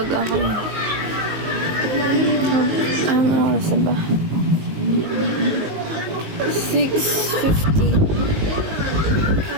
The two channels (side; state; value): left; late; 19 ms